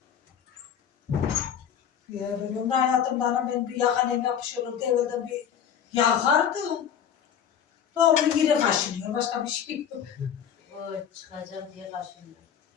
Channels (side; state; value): right; quieter; 8.6 dB